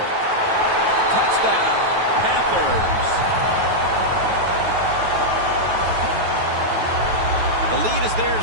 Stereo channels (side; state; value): left; late; 9.2 ms